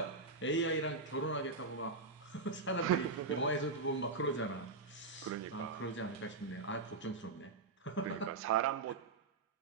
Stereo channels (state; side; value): quieter; left; 3.8 dB